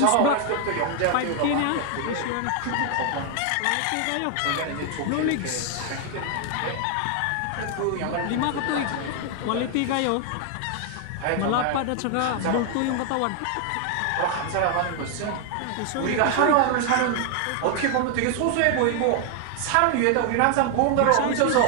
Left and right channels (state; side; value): different; both; correlation 0.00